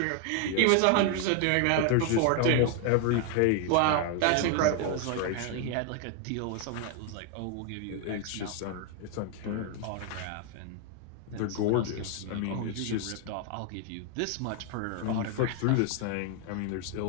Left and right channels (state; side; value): different; both; correlation 0.00